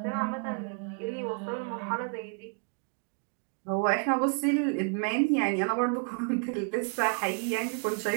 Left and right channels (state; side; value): quieter; left; 39.2 dB